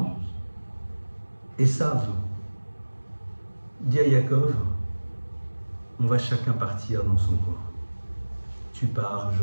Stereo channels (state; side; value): inverted; both; correlation -1.00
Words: Esav dit à Yaakov, on va chacun partir dans son coin. Tu pars,